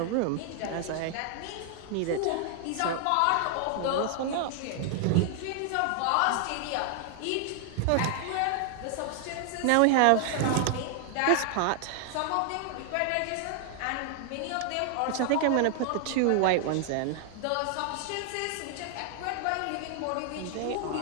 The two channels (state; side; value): different; both; correlation 0.00